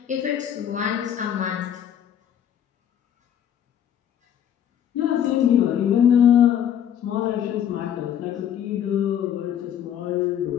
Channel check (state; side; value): quieter; right; 9.6 dB